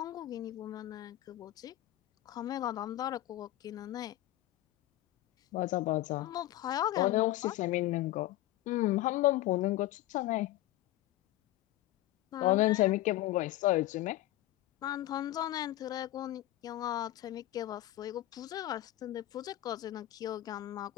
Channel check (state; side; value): quieter; right; 15.4 dB